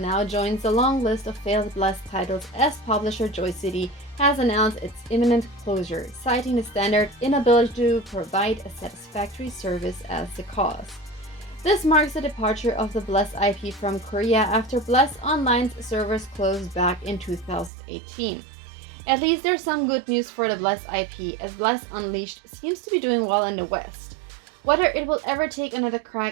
joins the long list of failed Bless titles as publisher Joy City has announced its imminent closure, citing the standard inability to provide a satisfactory service as the cause. This marks the departure of the Bless IP from Korea after Bless Online's servers closed back in 2018. At least there's some good news for the Bless IP, as Bless Unleashed seems to be doing well in the West. Whether it will ever take another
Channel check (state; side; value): drops out; left; at 17.7 s